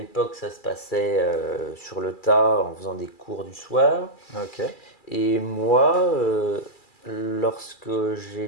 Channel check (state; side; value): late; right; 2.3 ms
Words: ça se passait sur le tas en faisant des cours du soir. ok. Et moi, lorsque